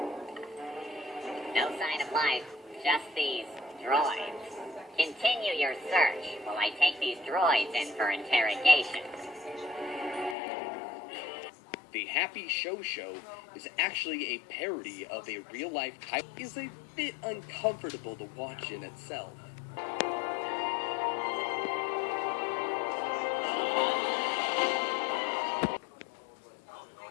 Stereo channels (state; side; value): drops out; right; at 10.4 s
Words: No sign of life, just these droids. Continue your search while I take these droids in for interrogation. The Happy Show Show is actually a parody of a real-life type. Is a bit uncomfortable to watch in itself.